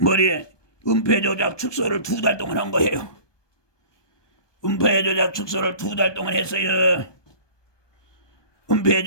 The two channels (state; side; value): late; right; 1.2 ms